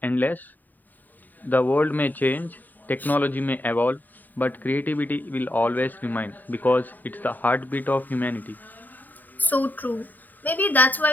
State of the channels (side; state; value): right; late; 0.087 ms